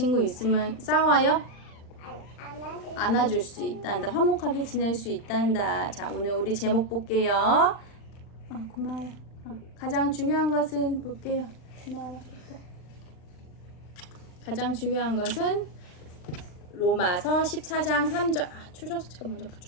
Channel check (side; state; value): right; late; 39 ms